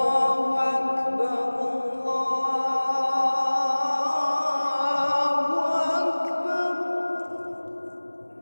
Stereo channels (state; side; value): inverted; both; correlation -1.00